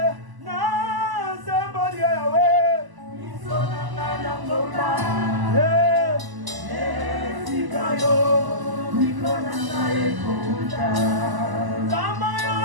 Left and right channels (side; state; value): left; late; 1.0 ms